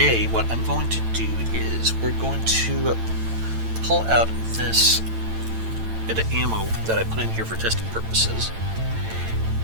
what I'm going to do is we're going to pull out this bit of ammo that I put in here for testing purposes,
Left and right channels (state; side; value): late; left; 9.0 ms